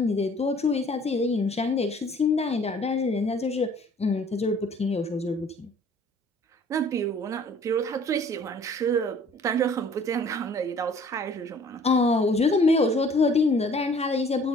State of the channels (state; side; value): normal; both; correlation 0.54